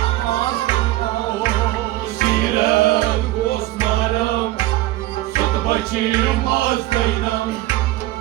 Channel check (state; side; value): quieter; left; 16.8 dB